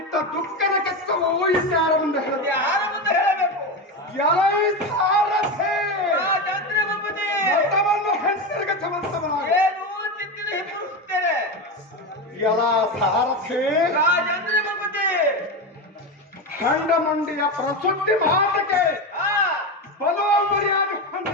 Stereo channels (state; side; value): normal; both; correlation 0.17